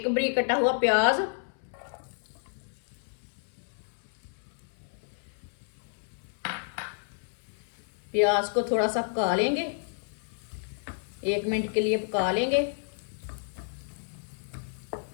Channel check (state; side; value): silent; right; 57 dB below the other